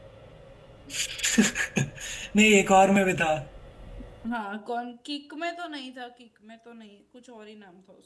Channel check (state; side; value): identical; both; correlation 1.00